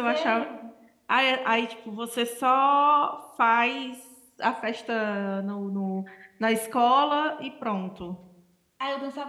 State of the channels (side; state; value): both; identical; correlation 1.00